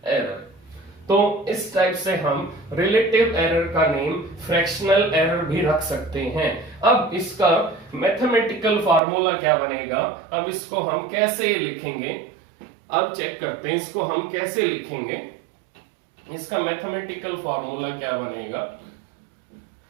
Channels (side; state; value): left; drops out; at 9.0 s